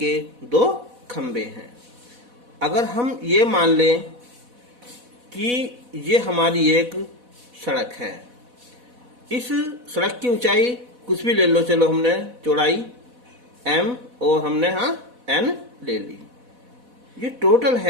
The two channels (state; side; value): late; left; 4.1 ms